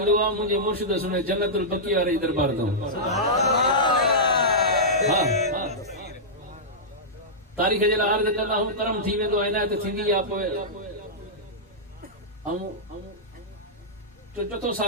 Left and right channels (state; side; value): normal; both; correlation -0.12